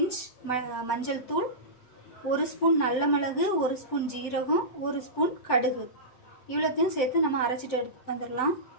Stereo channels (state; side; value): late; right; 7.9 ms